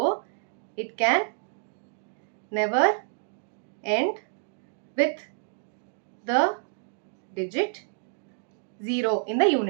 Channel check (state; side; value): silent; left; digital silence